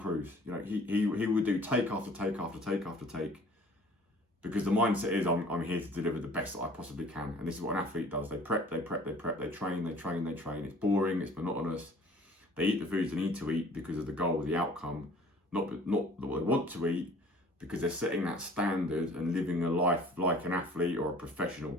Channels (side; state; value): both; normal; correlation 0.51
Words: he would do take after take after take after take, because the mindset is I'm here to deliver the best that I possibly can. And this is what an athlete does. They prep, they train. It's boring, it's monotonous. They eat the foods they need to eat because of the goal, the outcome, not what they want to eat, because they're setting that standard and living a life like an athlete or a